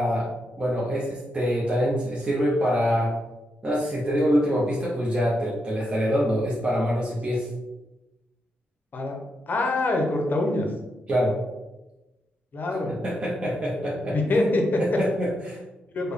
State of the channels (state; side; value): normal; both; correlation 0.83